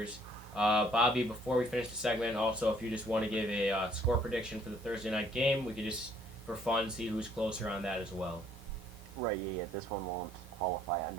Bobby, before we finish the segment, also if you just want to give a score prediction for the Thursday night game, we could just, for fun, see who's closer on that as well. Right, yeah. This one won't qualify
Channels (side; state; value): both; normal; correlation 0.62